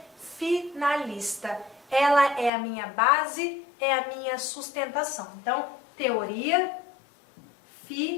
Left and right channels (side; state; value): right; drops out; at 2.5 s